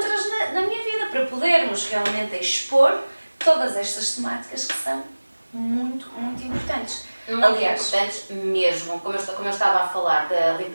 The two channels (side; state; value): both; inverted; correlation -1.00